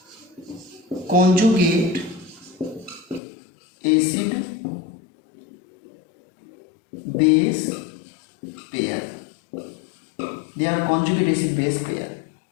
conjugate acid base pair, they are conjugate acid base pair,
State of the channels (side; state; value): right; drops out; at 3.2 s